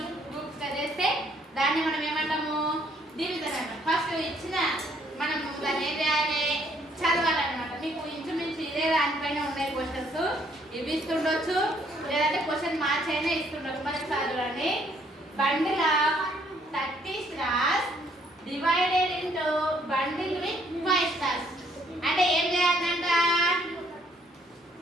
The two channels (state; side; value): normal; both; correlation 0.66